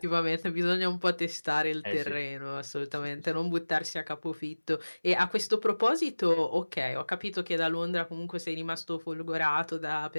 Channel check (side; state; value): both; inverted; correlation -1.00